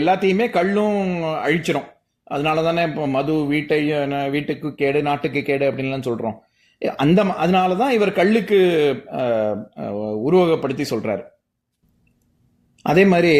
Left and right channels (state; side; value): identical; both; correlation 1.00